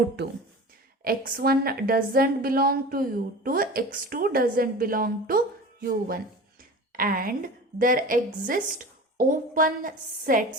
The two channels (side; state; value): both; normal; correlation 0.35